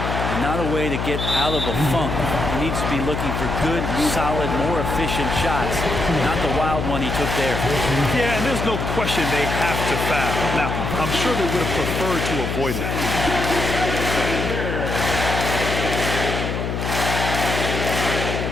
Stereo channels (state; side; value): noise; left; hum, 2 dB below the sound